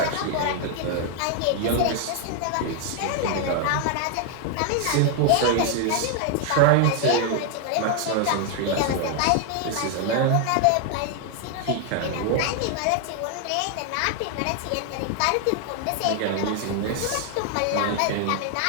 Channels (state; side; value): different; both; correlation 0.00